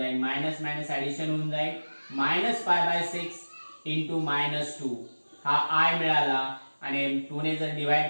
मायनस मायनस ऍडिशन होऊन जाईल -π/6 इंटू -2 हा i मिळाला आणि 2 ने जर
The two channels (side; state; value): both; inverted; correlation -1.00